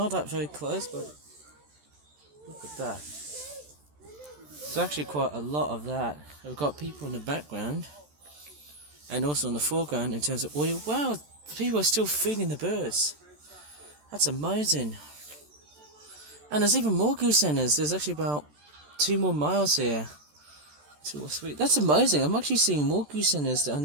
that very close, but look at that. There's actually quite a lot of that. We've got people in the background and also in the foreground in terms of oil. Wow, people are still feeding the birds. That's amazing. And there's even more goosendas. There's actually about 2 more males here. 2 or 3. That's amazing. I'm actually seeing more goosendas than I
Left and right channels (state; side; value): late; left; 14 ms